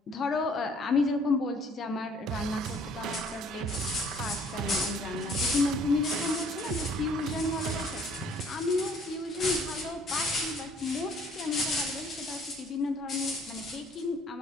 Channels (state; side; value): normal; both; correlation 0.58